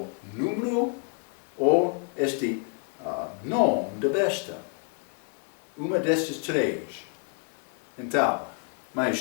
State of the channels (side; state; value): right; quieter; 38.0 dB